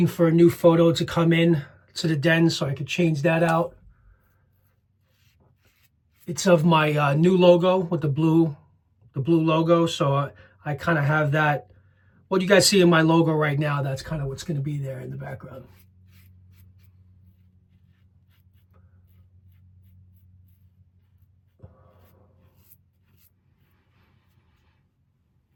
for a new photo to come in to the den so I could change that out. It's of my new logo with the blue logo, so I kind of have that. What you guys see in my logo right now, that's kind of what's going to be there in the background.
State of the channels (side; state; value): both; identical; correlation 1.00